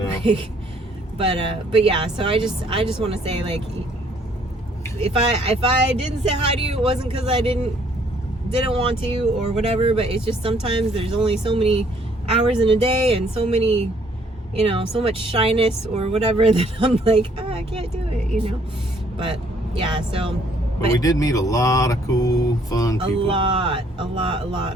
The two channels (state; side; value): normal; both; correlation 0.64